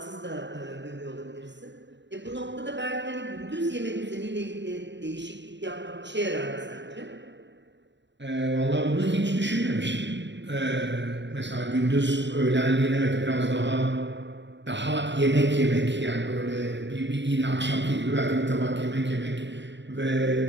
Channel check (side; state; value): left; late; 0.52 ms